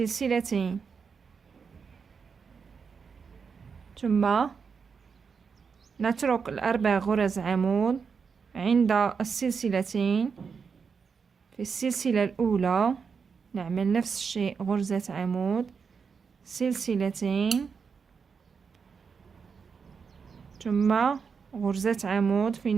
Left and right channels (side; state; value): left; quieter; 5.8 dB